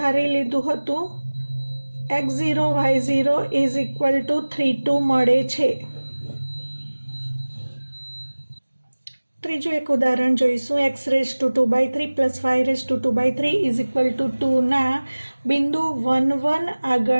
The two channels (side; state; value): both; inverted; correlation -1.00